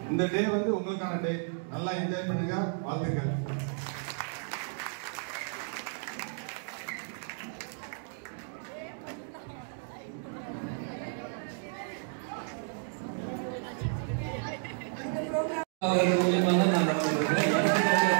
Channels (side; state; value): left; silent; 56 dB below the other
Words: இந்த டே வந்து உங்களுக்கான டே. நல்லா என்ஜாய் பண்ணுங்க. வாழ்த்துக்கள்.